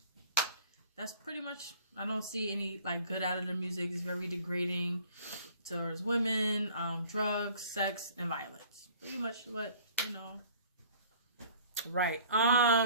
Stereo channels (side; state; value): both; inverted; correlation -0.51